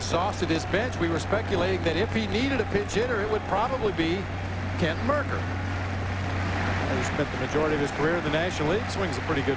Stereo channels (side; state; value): both; identical; correlation 1.00